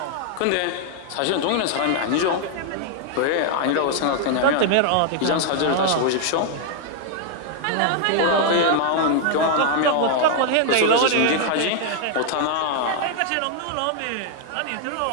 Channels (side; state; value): both; different; correlation 0.00